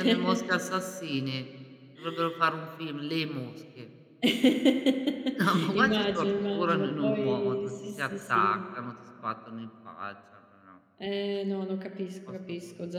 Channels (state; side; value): identical; both; correlation 1.00